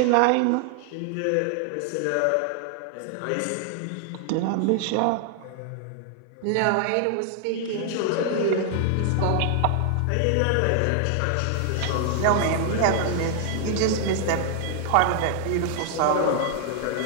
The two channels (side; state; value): both; different; correlation 0.00